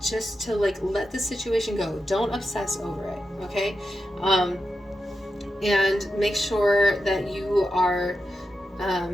just to like let the situation go. Don't obsess over it, okay? And make sure that you are,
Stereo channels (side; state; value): both; normal; correlation 0.89